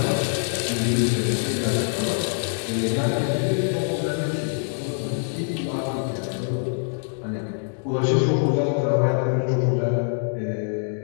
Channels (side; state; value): right; silent; digital silence